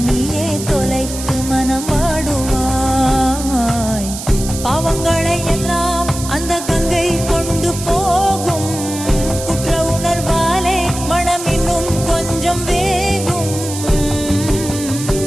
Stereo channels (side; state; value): right; noise; hiss, 9 dB below the sound